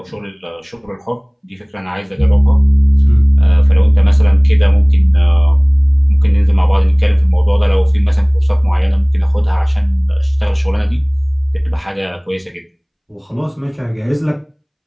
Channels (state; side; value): identical; both; correlation 1.00